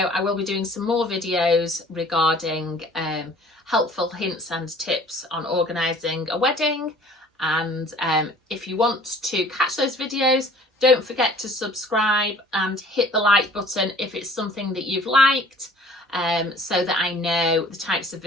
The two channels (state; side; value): normal; both; correlation 0.51